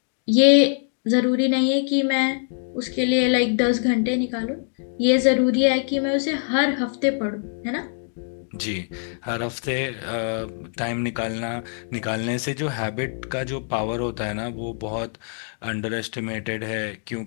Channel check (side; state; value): right; silent; 57 dB below the other